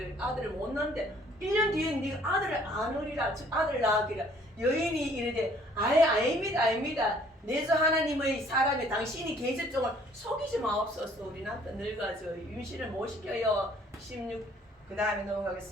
아들을 못 낳는데 1년 뒤에 네가 아들을 안으리라, 즉 아들을 낳으리라. 여인이 이르되 아닙니다. 내주 하나님의 사람이 당신이 계집종을 속이지 마옵소서. 우리 남편 늙어가지고 임신을 못 시켜요. 16 그 다음에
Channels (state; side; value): normal; both; correlation 0.59